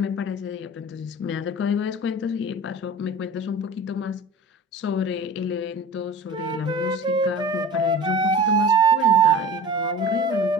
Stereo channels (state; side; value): normal; both; correlation 0.38